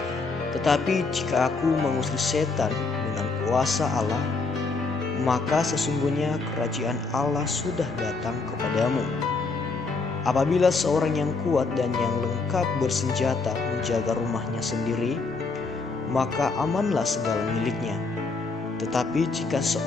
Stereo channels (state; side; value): quieter; right; 4.0 dB